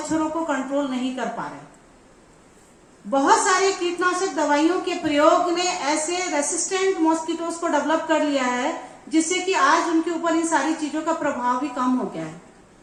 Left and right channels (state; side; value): identical; both; correlation 1.00